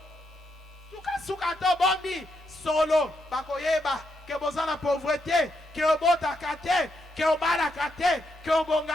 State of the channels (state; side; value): normal; both; correlation 0.81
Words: Souka souka to bombi solo. Bakoyeba que besoin la pauvreté, que obota kate, que obala kate, que